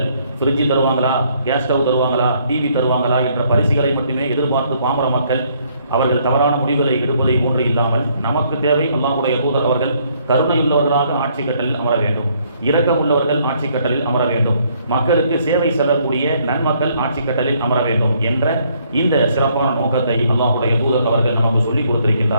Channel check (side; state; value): both; inverted; correlation -0.67